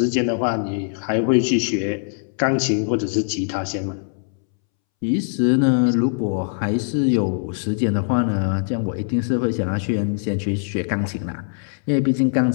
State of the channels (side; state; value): right; silent; 64 dB below the other